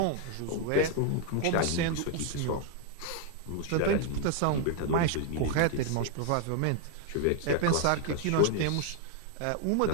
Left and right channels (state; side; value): different; both; correlation 0.00